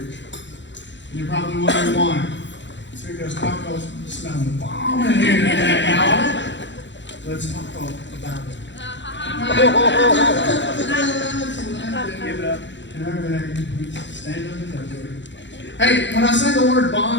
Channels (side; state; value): right; late; 0.53 ms